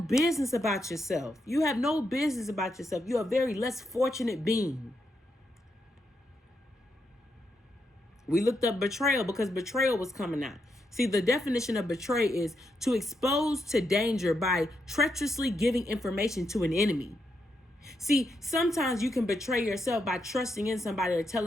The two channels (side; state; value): both; normal; correlation 0.82